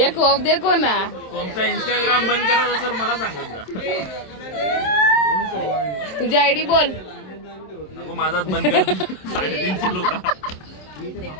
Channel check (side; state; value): right; late; 27 ms